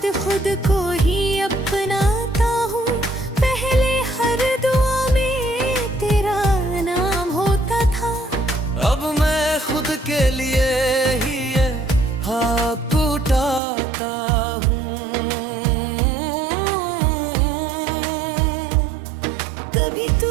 खुद को ही अपनाता हूँ। पहले हर दुआ में तेरा नाम होता था। अब मैं खुद के लिए ही ये हाथ उठाता हूँ। कभी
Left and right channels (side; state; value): left; drops out; at 13.6 s